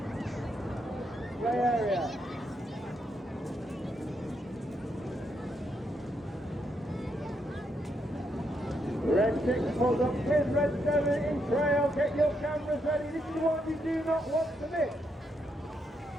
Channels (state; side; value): normal; both; correlation 0.78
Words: Red 6 pulls up in, red 7 in trail, get your cameras ready, this is the one you do not want to miss.